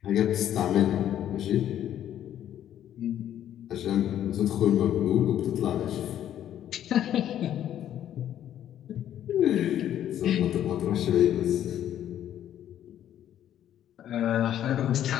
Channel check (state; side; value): quieter; right; 11.0 dB